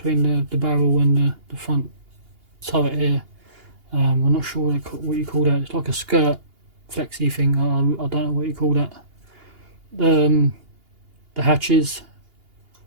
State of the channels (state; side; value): late; left; 2.8 ms